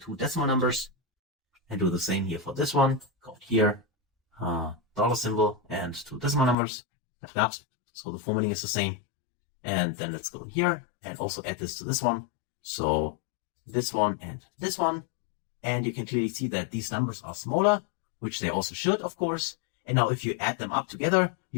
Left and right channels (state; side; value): drops out; right; at 6.6 s